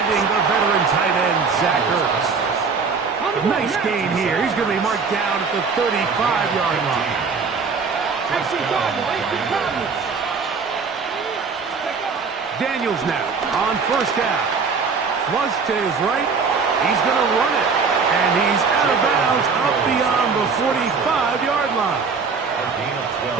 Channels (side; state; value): left; quieter; 5.1 dB